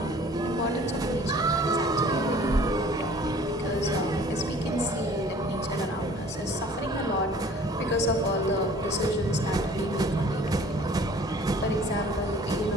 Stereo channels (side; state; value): both; normal; correlation 0.51